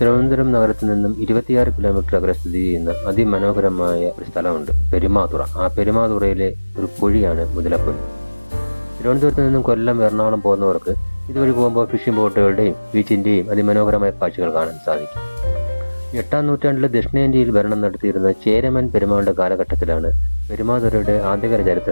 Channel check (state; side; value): inverted; both; correlation -1.00